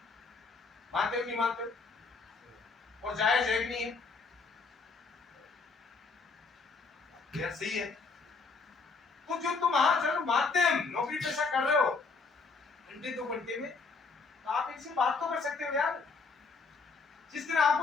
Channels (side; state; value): right; quieter; 4.5 dB